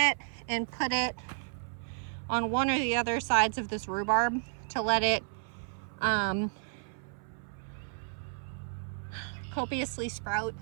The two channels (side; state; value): left; silent; 56 dB below the other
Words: and put it on one or the other sides of this rhubarb to let it copiously sprout